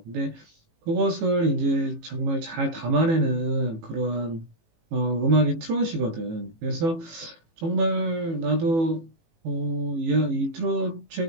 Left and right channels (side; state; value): left; late; 18 ms